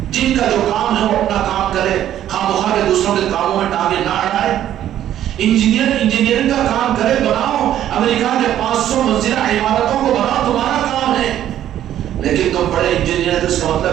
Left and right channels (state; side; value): quieter; left; 11.5 dB